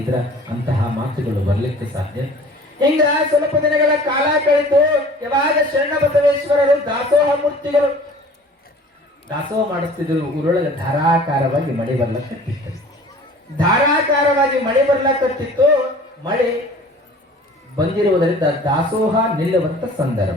ಇದ್ರ ಅಂತಹ ಮಾತುಗಳು ಬರ್ಲಿಕ್ಕೆ ಸಾಧ್ಯ. ಹಿಂಗ ಸ್ವಲ್ಪ ದಿನಗಳ ಕಾಲ ಕಳೆದು ಯಾವಾಗ ಶರಣ ಬಸವೇಶ್ವರರು ದಾಸೋಹ ಮೂರ್ತಿಗಳು ದಾಸೋಹ ಮಾಡಿಸ್ತಿದ್ರು, ಊರೊಳಗೆ ಧಾರಾಕಾರವಾಗಿ ಮಳೆ ಬರ್ಲಕತ್ತಿತ್ತು. ಧಾರಾಕಾರವಾಗಿ ಮಳೆ ಬರ್ಲಕತ್ತಿತ್ತು. ಮಳೆ ಬಂದಿರುವುದರಿಂದ ದಾಸೋಹ ನಿಲ್ಲುವಂತ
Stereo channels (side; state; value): both; normal; correlation 0.46